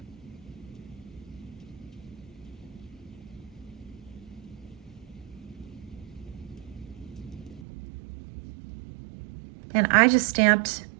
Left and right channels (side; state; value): left; drops out; at 7.6 s